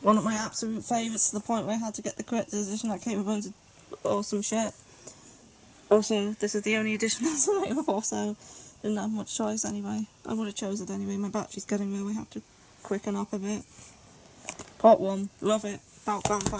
of my absolute favourites, to the point where I had to get the collector's edition that came with loads of awesome shit. Also, this is the only edition that's available, so didn't have much choice anyway. I would have chose it anyway. My battery's getting low, I have to quicken up a bit. Part 1, love it, about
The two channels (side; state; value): both; identical; correlation 1.00